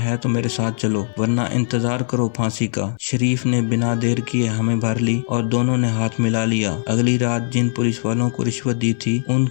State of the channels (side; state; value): right; silent; 66 dB below the other